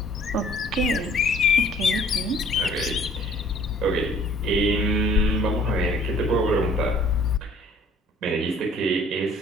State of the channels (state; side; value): normal; both; correlation 0.56